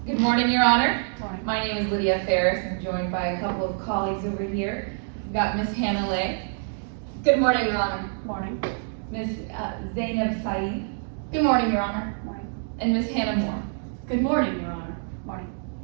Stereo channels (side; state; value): left; silent; digital silence